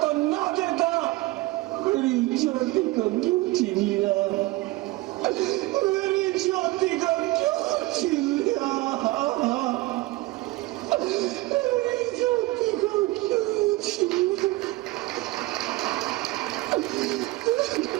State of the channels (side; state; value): left; quieter; 20.1 dB